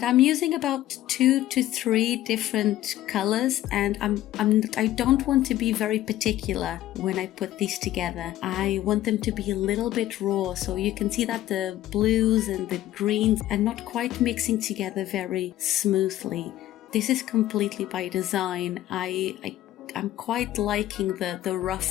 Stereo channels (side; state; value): right; quieter; 14.0 dB